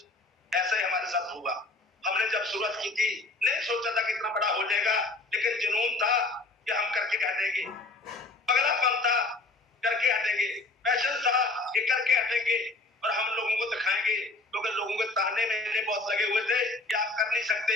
ऐसा ही हमारे साथ हुआ। हमने जब शुरुआत की थी नहीं सोचा था कि इतना बड़ा हो जाएगा, लेकिन जुनून था कि हम करके हटेंगे, पगलापन था करके हटेंगे, पैशन था कि करके हटेंगे और हम लोगों को दिखाएंगे। क्योंकि लोगों के ताने मेरे बहुत लगे हुए थे कि आप कर नहीं सकते,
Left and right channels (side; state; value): right; quieter; 3.3 dB